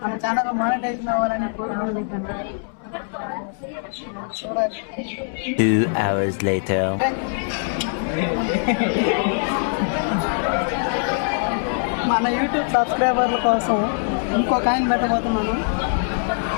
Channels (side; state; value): right; silent; 63 dB below the other